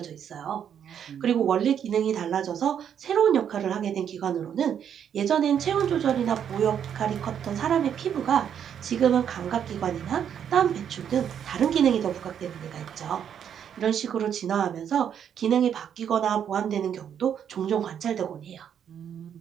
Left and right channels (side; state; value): left; quieter; 8.7 dB